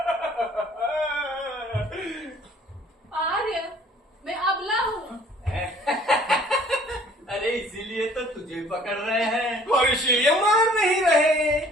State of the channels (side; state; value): both; normal; correlation 0.55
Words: आर्य, मैं अबला हूँ। अरे इसीलिए तो तुझे पकड़ रहे हैं और इसीलिए मार नहीं रहे।